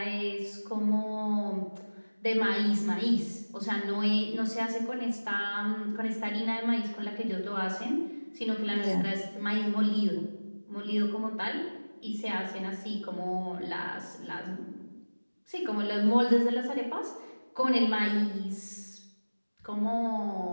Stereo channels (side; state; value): both; inverted; correlation -1.00